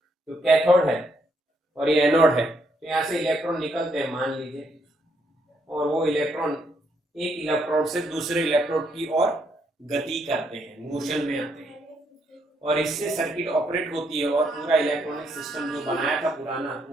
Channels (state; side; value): normal; both; correlation 0.74